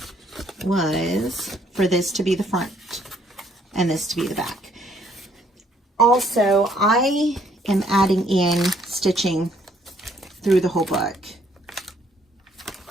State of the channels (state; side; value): normal; both; correlation 0.66